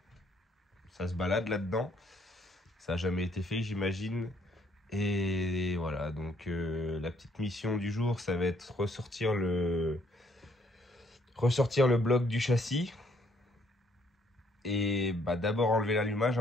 ça se balade là-dedans. Ça n'a jamais été fait, j'imagine. Et voilà, donc la petite mission du jour, ça va être ressortir le bloc du châssis. Et bah, d'abord enlever l'allumage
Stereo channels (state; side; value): normal; both; correlation 0.67